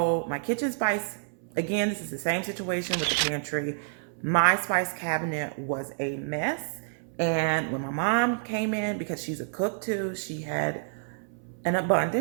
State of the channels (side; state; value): left; silent; 59 dB below the other